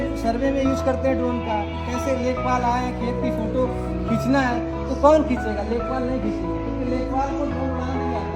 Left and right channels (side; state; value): both; identical; correlation 1.00